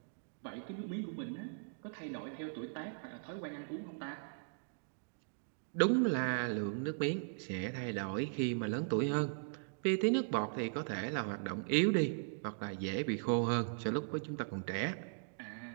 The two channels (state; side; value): silent; left; digital silence